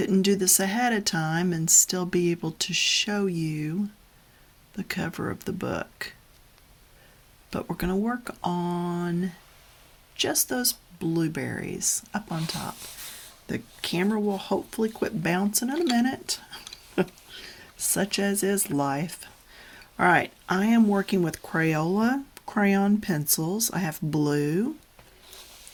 do this ahead of time and still be able to show you the cover of the book. But we're going to work on just those blueberries up on top. The camera will hopefully quit bouncing in a minute, such as is life. All right, I am working with Crayola crayon pencils. I have blue.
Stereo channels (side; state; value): both; identical; correlation 1.00